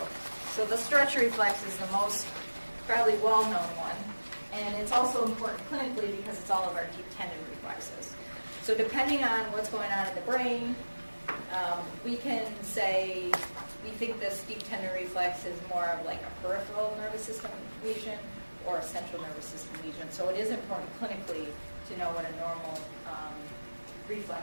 So the stretch reflex is the most probably well-known one. And it's also important clinically because it's all of our deep tendon reflexes. So depending on what's going on in the brain, We can say, we think this deep tendon reflex is more of like a peripheral nervous system lesion or a central nervous system lesion. So it is important clinically to know what a normal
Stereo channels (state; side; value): inverted; both; correlation -1.00